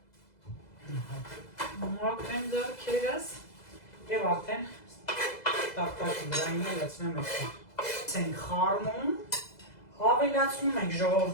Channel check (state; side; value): late; right; 2.0 ms